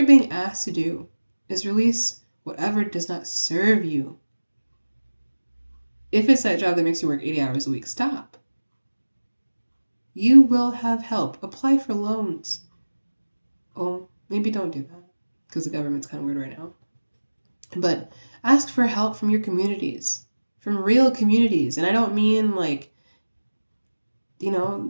being asked to do is release whatever does not serve you. If it's that job that makes you work 80 hours a week, stop. You will have help. Apply for loans. Oh, maybe don't do that because the government's kind of weird right now. But ask for help from your communities, from real communities. And I don't mean like,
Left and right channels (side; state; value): both; inverted; correlation -1.00